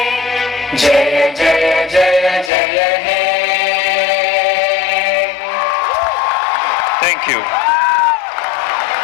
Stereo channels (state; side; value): drops out; right; at 2.5 s